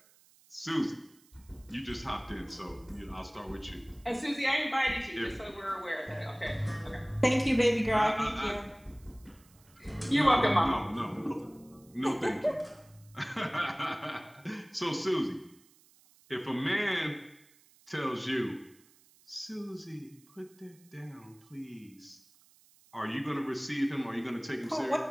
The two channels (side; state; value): right; noise; hiss, 28 dB below the sound